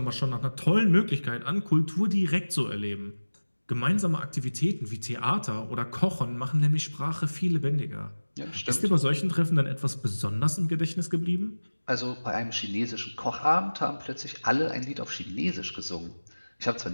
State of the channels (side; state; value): both; inverted; correlation -1.00